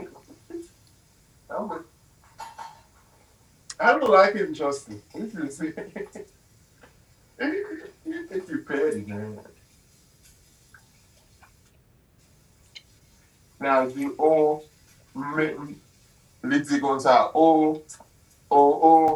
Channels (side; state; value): both; identical; correlation 1.00